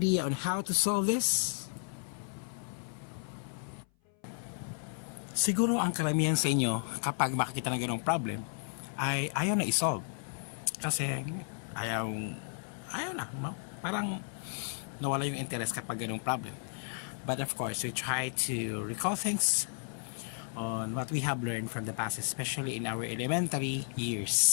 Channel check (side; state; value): right; silent; 55 dB below the other